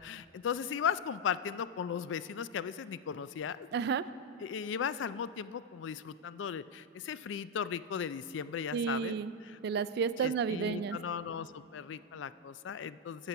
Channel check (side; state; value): both; normal; correlation 0.03